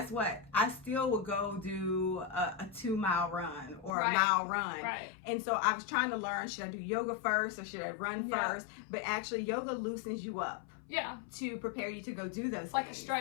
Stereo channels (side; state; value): right; drops out; at 4.0 s